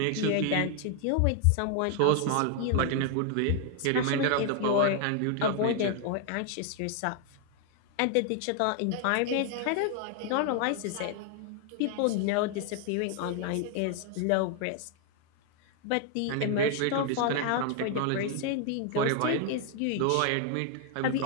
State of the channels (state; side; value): different; both; correlation 0.00